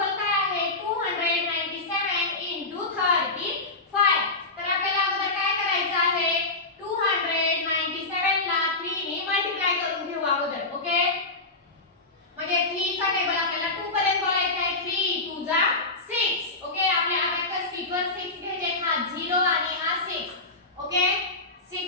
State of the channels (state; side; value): quieter; right; 3.2 dB